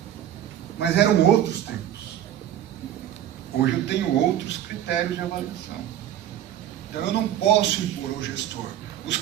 Mas eram outros tempos. Hoje eu tenho outros critérios de avaliação. Então eu não posso impor ao gestor os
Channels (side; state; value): left; quieter; 11.1 dB